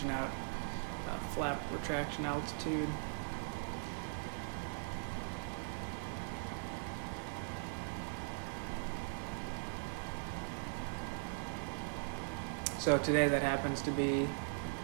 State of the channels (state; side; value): silent; left; 51 dB below the other